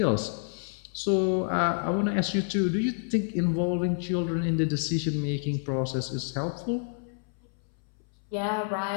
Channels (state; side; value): silent; right; 59 dB below the other